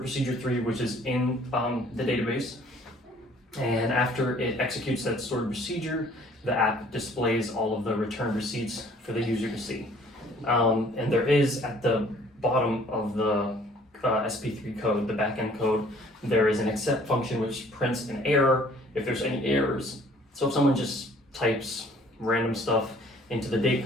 3, which is in the database. And after it executes that stored procedure, the app displays all of the returned receipts for the user to see. And there is at the bottom of the SP3 code, the backend code, there is an accept function which prints an error if there's any errors. So if someone just types random stuff into the date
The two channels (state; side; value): normal; both; correlation 0.56